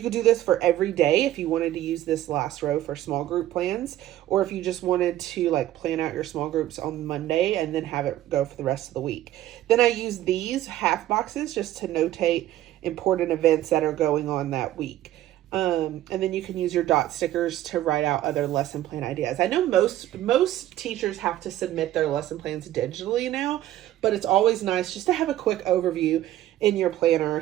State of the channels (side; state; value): left; quieter; 13.7 dB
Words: could do this for every day if you wanted to use this last row for small group plans, or if you just wanted to like plan out your small groups on Monday and then have it go for the rest of the week. Then I use these half boxes just to notate important events that are going on that week. And then you can use your dot stickers to write out other lesson plan ideas. I know most teachers have to submit their lesson plans digitally now, but it's always nice just to have a quick overview in your